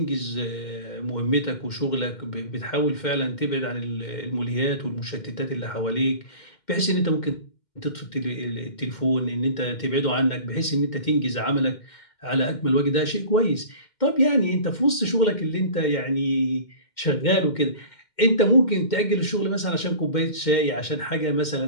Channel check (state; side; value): late; right; 2.1 ms